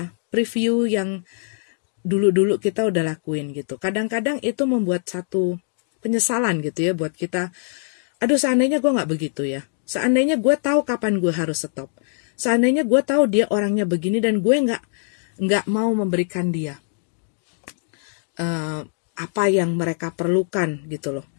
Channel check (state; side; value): silent; right; 64 dB below the other